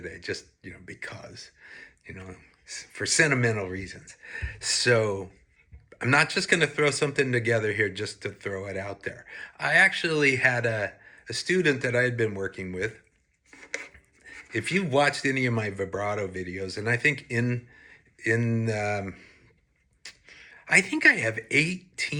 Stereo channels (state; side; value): identical; both; correlation 1.00